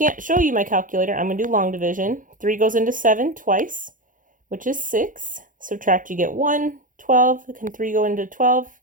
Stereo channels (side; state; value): left; late; 0.38 ms